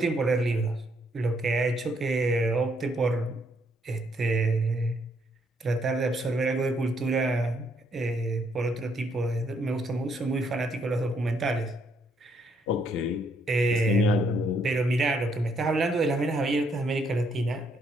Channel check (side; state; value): both; normal; correlation 0.72